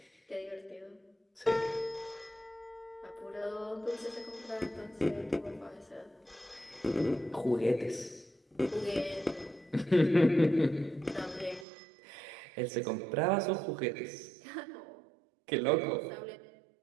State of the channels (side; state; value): left; drops out; at 11.7 s